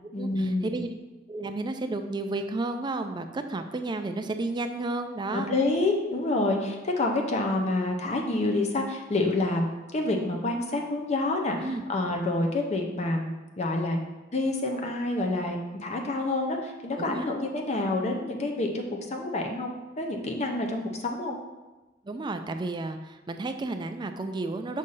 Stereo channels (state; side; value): normal; both; correlation 0.48